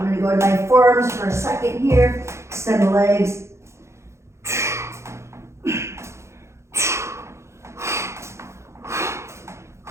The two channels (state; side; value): late; left; 0.13 ms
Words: gonna go to my forearms for a second here. Extend the legs.